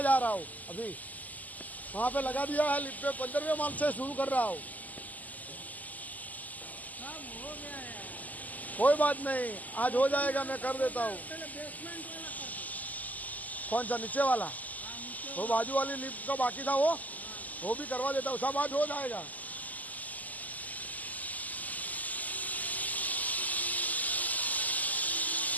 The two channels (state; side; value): late; right; 0.079 ms